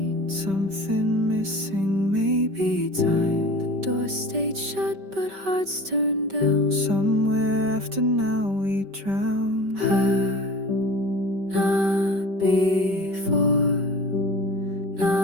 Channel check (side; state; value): left; late; 5.2 ms